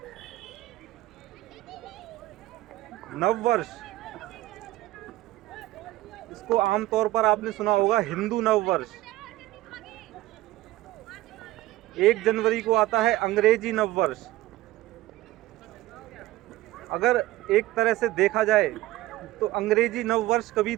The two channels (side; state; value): left; quieter; 16.5 dB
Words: नव वर्ष, इसको आमतौर पर आपने सुना होगा हिंदू नव वर्ष। 1 जनवरी को आता है अंग्रेजी नव वर्ष। अगर एक तरह से देखा जाए तो अंग्रेजी नव वर्ष कभी